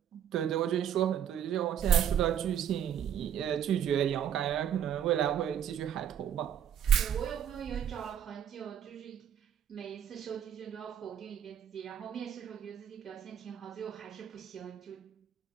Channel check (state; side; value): quieter; left; 9.3 dB